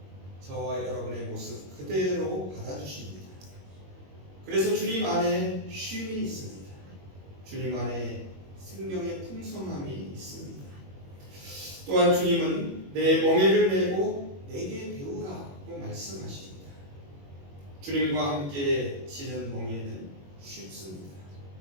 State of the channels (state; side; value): late; left; 21 ms